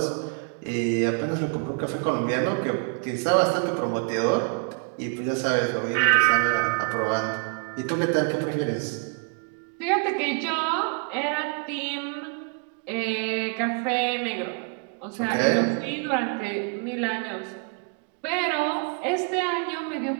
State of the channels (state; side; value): quieter; left; 38.1 dB